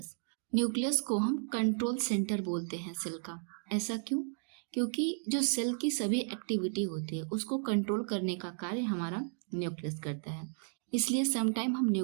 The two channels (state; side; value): silent; left; 55 dB below the other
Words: न्यूक्लियस को हम कंट्रोल सेंटर बोलते हैं सेल का। ऐसा क्यों? क्योंकि जो सेल की सभी एक्टिविटी होती है उसको कंट्रोल करने का कार्य हमारा न्यूक्लियस करता है। इसलिए समटाइम हम